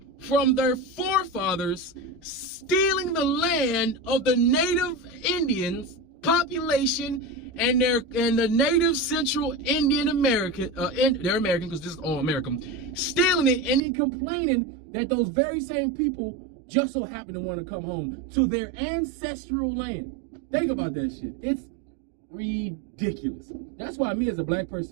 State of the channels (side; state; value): left; drops out; at 13.8 s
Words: from their forefathers stealing the land of the native Indians population and the native Central Indian American, they're American because this is all American, stealing it and then complaining that those very same people just so happen to want to come home to their ancestral land. Think about that shit. It's ridiculous. That's why me as a black